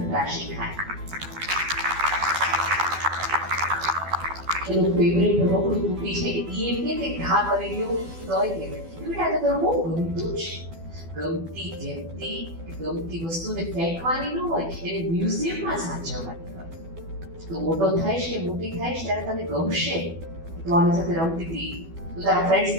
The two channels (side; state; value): left; late; 12 ms